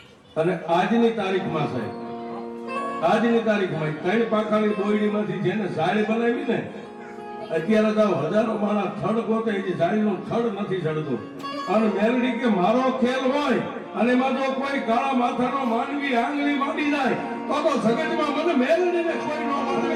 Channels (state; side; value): identical; both; correlation 1.00